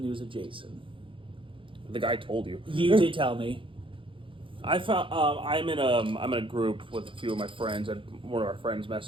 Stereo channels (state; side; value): late; left; 0.25 ms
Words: of Jason. The guy told you. You did tell me. I found I'm in a group with a few of my friends, and one of our friends